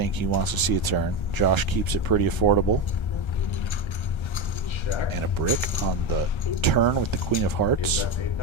he wants to see a turn. Josh keeps it pretty affordable. And a brick on the turn with the Queen of Hearts.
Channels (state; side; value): late; right; 1.3 ms